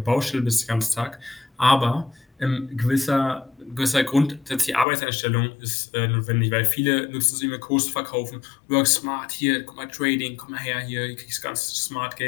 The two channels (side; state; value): right; drops out; at 4.9 s